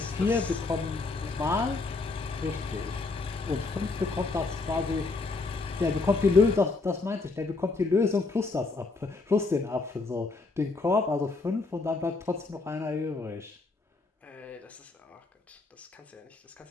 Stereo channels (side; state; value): right; quieter; 3.7 dB